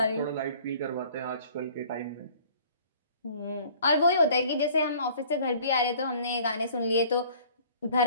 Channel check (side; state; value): both; inverted; correlation -0.52